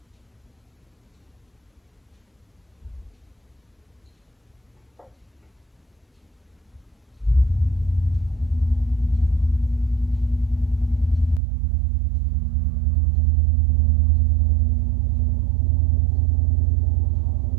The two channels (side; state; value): left; drops out; at 11.4 s